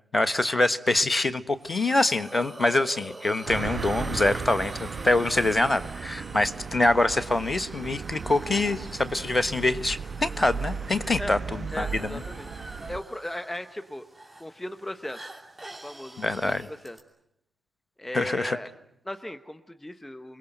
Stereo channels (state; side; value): normal; both; correlation 0.90